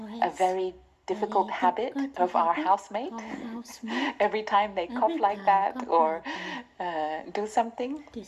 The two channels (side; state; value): both; identical; correlation 1.00